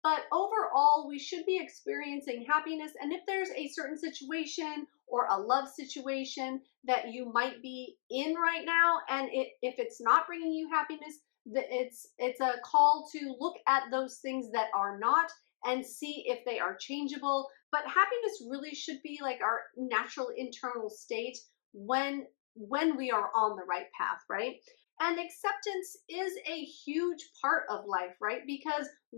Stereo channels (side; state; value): right; silent; digital silence